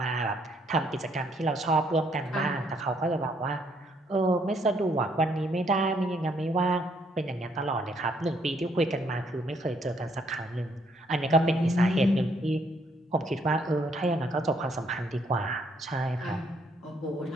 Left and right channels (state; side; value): normal; both; correlation 0.69